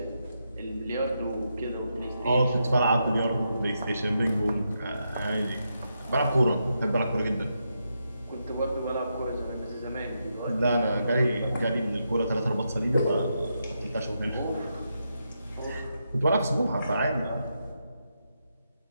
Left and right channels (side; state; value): both; inverted; correlation -0.83